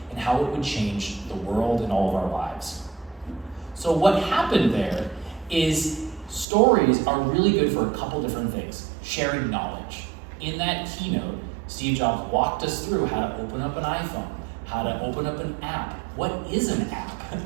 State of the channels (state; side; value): drops out; left; at 6.5 s